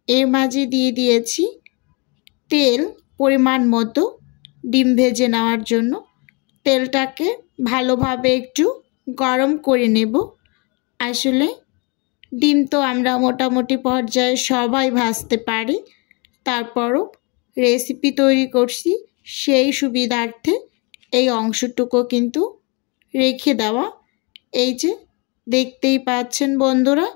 এর মাঝে দিয়ে দিয়েছি তেল পরিমাণ মতো ডিম ভেজে নেওয়ার জন্য। তেলটাকে ভালোভাবে একটু গরম করে নেব। আসলে ডিম তো আমরা মোটামুটি পর্যায়ে সবাই ভাজতে পারি, তারপরও রেসিপি তৈরি করছি সেই সুবিধার্থে এই অংশটুকু কিন্তু রেখে দেওয়া। এই যে দেখতেই পাচ্ছেন বন্ধুরা,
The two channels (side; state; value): right; quieter; 31.1 dB